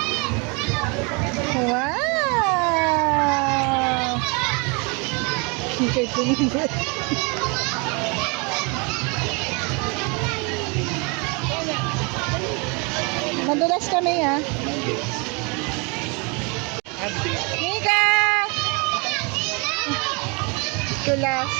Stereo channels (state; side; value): quieter; left; 31.1 dB